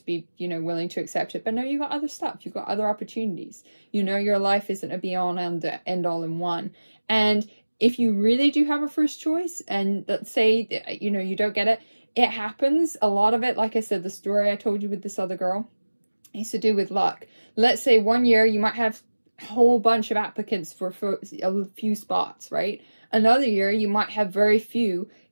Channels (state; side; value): inverted; both; correlation -1.00